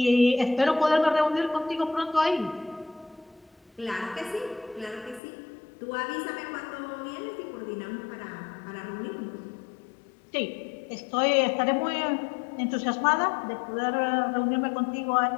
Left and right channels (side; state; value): right; drops out; at 5.2 s